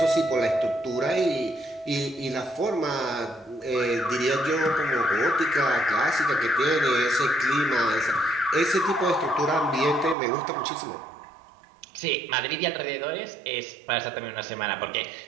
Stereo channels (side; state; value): left; drops out; at 10.2 s